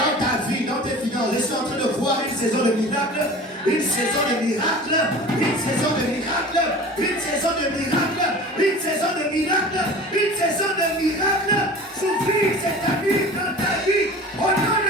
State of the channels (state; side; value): normal; both; correlation 0.39